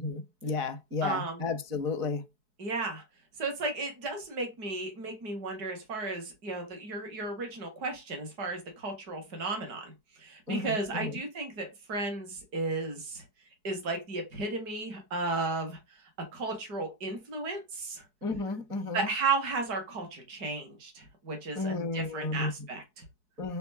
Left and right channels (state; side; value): late; left; 4.7 ms